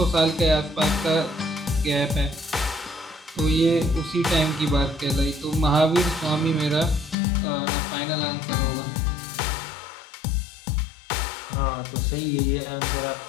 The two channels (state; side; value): drops out; right; at 7.2 s